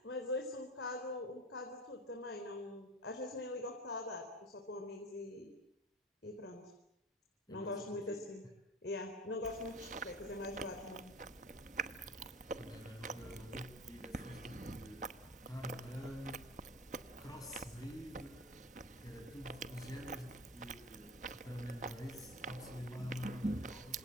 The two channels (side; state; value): both; normal; correlation 0.36